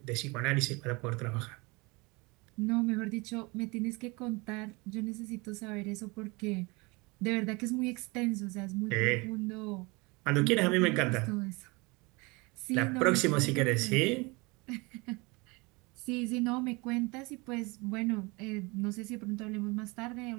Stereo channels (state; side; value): quieter; left; 26.4 dB